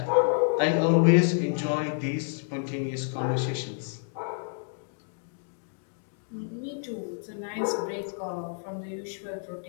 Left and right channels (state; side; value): silent; right; digital silence